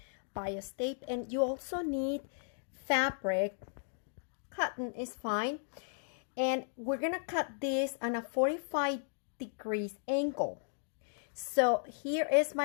bias tape. And you also need fabric. Cotton is fine. And we're going to cut this on a 45 degrees angle. So here is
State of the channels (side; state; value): right; silent; digital silence